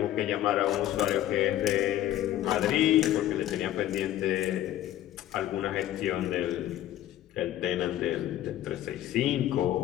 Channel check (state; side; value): quieter; right; 12.9 dB